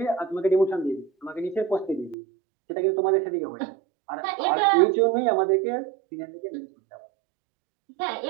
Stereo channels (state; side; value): drops out; left; at 2.1 s